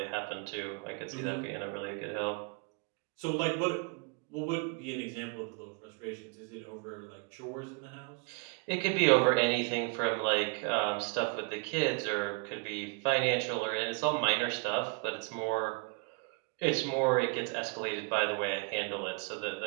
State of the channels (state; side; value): quieter; left; 33.6 dB